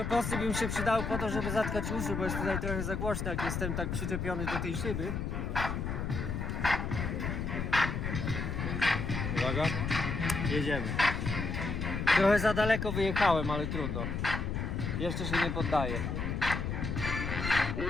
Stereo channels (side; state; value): left; noise; rumble, 2 dB below the sound